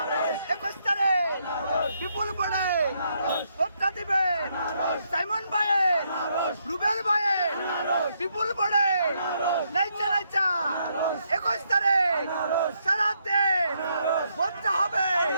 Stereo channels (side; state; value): both; inverted; correlation -0.76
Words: 21 তারিখ বিপুল পড়ে ভোটটা দিবেন সাইমন ভাইয়ের, রুবেল ভাইয়ের, বিপুল পড়ে নাইচা নাইচা 21 তারিখ সারাদিন ভোটটা হবে